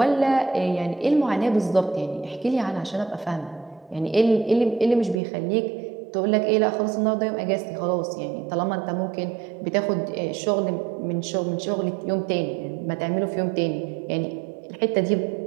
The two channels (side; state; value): left; drops out; at 5.2 s